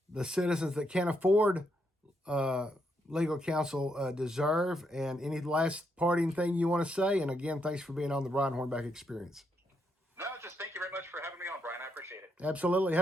the citizens that can't afford legal counsel deserve. And any last parting thing you want to say? And again, thanks for being on the Brian Hornback Experience. No, just thank you very much for having me on, Brian. I appreciate it. Absolutely.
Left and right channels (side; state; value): both; normal; correlation 0.78